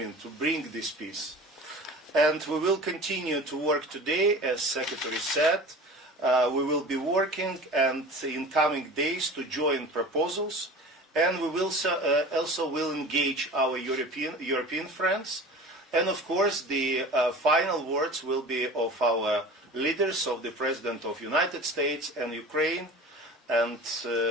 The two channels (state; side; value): normal; both; correlation 0.38